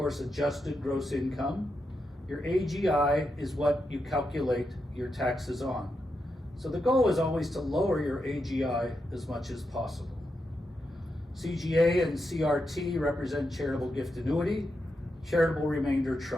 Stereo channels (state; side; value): normal; both; correlation 0.85